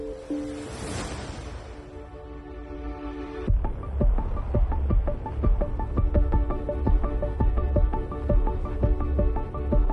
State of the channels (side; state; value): both; identical; correlation 1.00